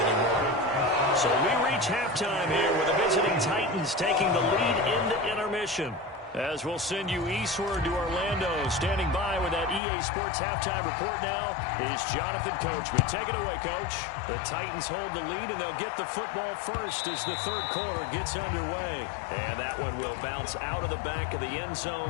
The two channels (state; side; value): drops out; right; at 9.8 s